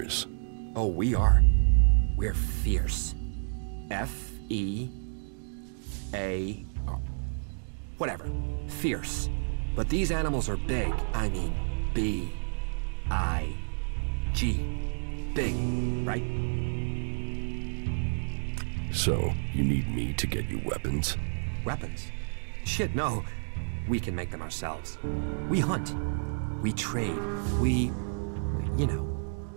Oh, we are. We're fierce. F-E-A... whatever. Fierce. But these animals are big. I mean, B-I-G. Big, right? So, you need me to get you weapons? Weapons? Shit, no. We can make them ourselves. We hunt. We trade. We... you know.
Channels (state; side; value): silent; left; digital silence